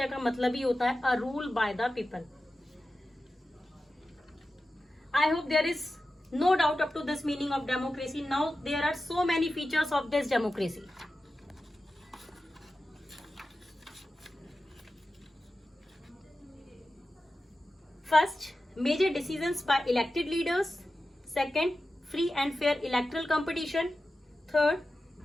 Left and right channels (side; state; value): both; normal; correlation 0.93